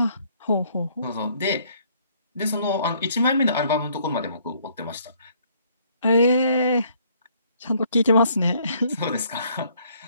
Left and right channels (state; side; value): inverted; both; correlation -0.64